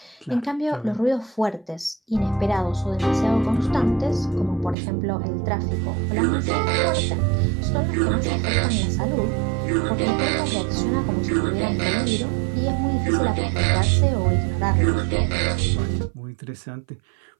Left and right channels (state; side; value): drops out; left; at 4.8 s